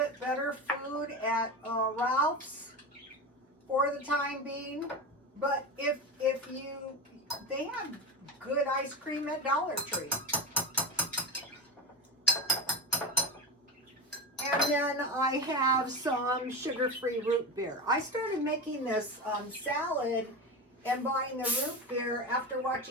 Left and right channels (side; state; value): both; normal; correlation 0.21